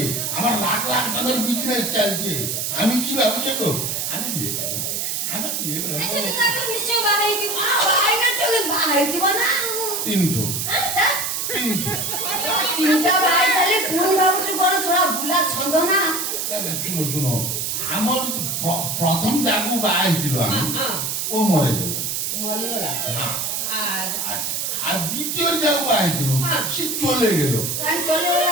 আমার লাখ লাখ টাকার বিজনেস চলছে। আমি কি ভাবছি তো, আমি বিয়ে করবো, আমি বিয়ে করবো। ऐसे तो ताको निश्चय बागे की। ଭାଇ ନା ଚলে ବାହାଇ দিব ନା। তিনটো हां তিনটো তিনটা ভাই চালি পুন ভাবুଛୁ ঘর ଛଡା ବୁଲା ଛନ୍ଦ ନା। শুনো শুনো, আমার প্রথম যাগু বাହା হয়েছিল আমি, ও মরে গেল। মরিগলা। হ্যাঁ। আর আর দ্বিতীয় যাগু বাହା হয়েছিল, সে চলে গেল। কাই চলে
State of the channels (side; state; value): right; noise; hiss, 1 dB below the sound